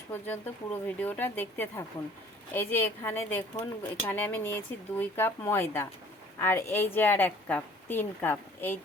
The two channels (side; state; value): both; normal; correlation 0.52